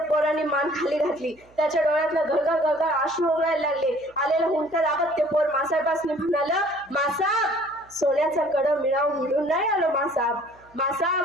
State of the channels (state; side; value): noise; right; hum, 30 dB below the sound